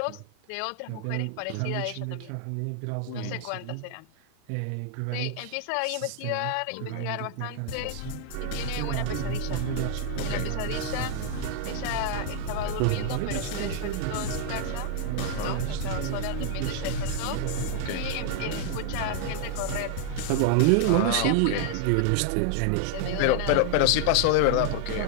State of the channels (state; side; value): different; both; correlation 0.00